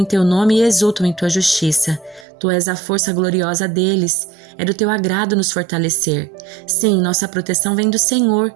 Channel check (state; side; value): drops out; left; at 2.2 s